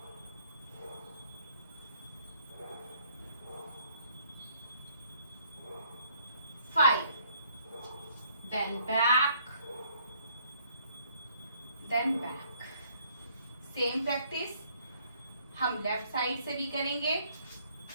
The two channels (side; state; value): both; inverted; correlation -0.65